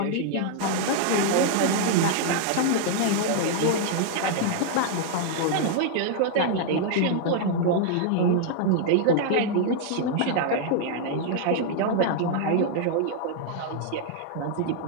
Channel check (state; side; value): different; both; correlation -0.01